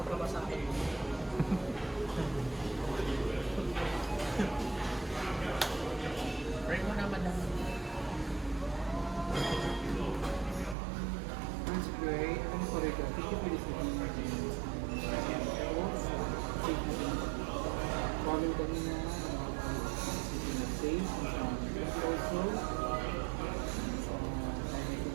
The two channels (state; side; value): drops out; left; at 10.8 s